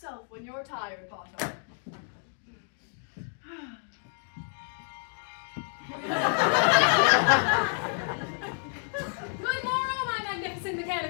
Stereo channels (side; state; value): right; silent; 58 dB below the other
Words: when you're tired, Potter. Good morrow, my magnificent